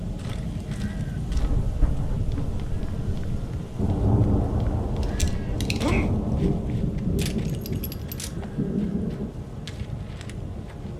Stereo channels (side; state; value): both; identical; correlation 1.00